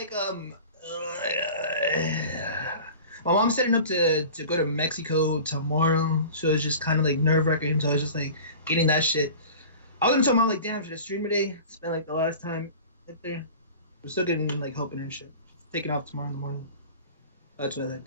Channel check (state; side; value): inverted; both; correlation -0.39